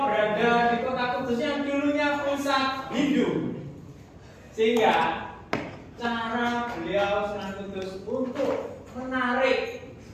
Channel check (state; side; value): identical; both; correlation 1.00